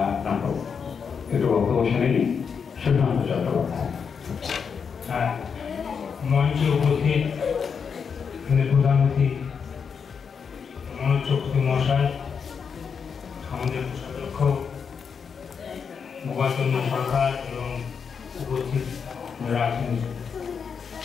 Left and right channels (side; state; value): right; quieter; 6.3 dB